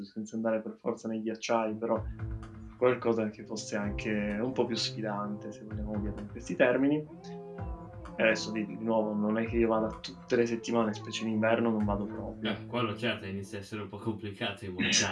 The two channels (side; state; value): both; identical; correlation 1.00